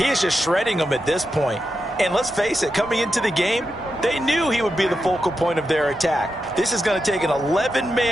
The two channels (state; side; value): normal; both; correlation 0.88